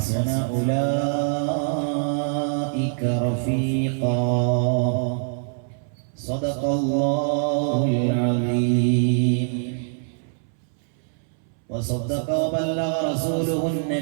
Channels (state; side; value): silent; left; 63 dB below the other